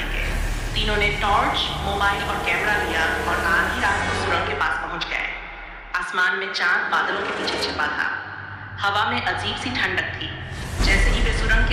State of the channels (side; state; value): both; identical; correlation 1.00